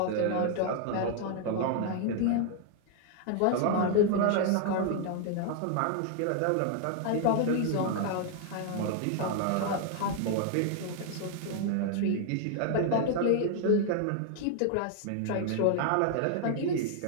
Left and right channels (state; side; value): different; both; correlation 0.00